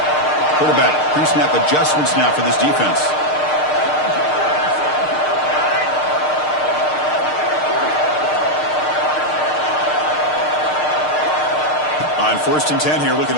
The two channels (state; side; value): late; right; 6.6 ms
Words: Quarterback pre-snap adjustments now for this defense. On first and 10 here, looking